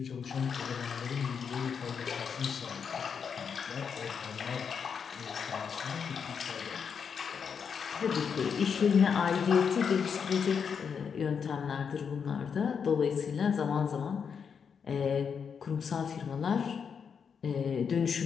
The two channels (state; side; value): quieter; right; 6.6 dB